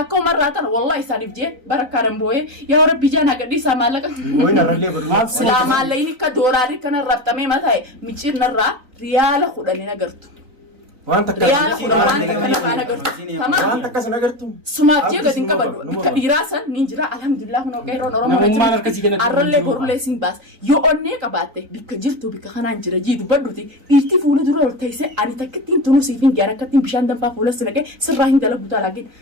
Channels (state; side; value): late; left; 3.9 ms